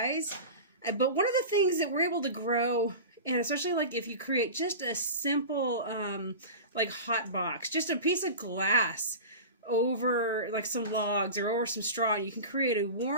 But one of the things that we're able to grow, and especially like if you create just a simple like hot box, just a piece of glass over like some logs or over some straw, you can create a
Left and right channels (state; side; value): inverted; both; correlation -0.30